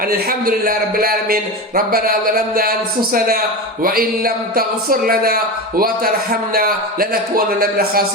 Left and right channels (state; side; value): normal; both; correlation 0.23